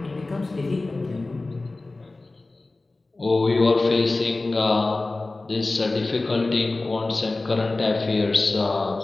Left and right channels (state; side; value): quieter; right; 3.2 dB